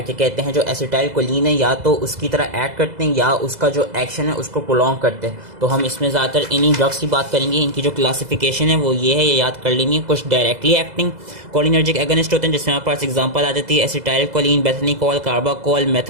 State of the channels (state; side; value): late; left; 2.0 ms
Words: कहते हैं, जो एसिटाइल कोलिन है या तो उसकी तरह ऐड करते हैं या उसका जो एक्शन है उसको प्रोलॉन्ग करते हैं। तो हम इसमें ज़्यादातर इन्हीं ड्रग्स की बात करेंगे। इनकी जो क्लासिफिकेशन है वो ये है, ये याद कर लेनी है। कुछ डायरेक्टली एक्टिंग कोलिनर्जिक एगोनिस्ट होते हैं जिसमें हमारे पास एग्जांपल आ जाती है acetylcholine, bethanechol, carbachol,